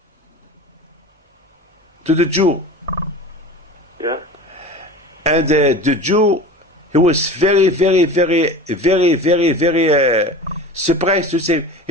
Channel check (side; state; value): both; normal; correlation 0.35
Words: to the Jew. Yeah. And the Jew, he was very, very, very, very, very, very surprised to see him.